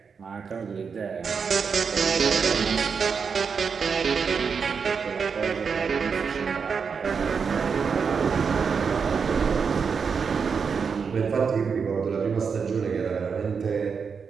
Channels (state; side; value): quieter; left; 5.9 dB